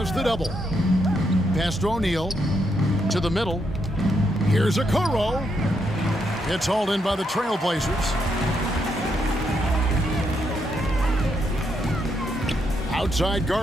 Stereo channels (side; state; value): both; normal; correlation 0.78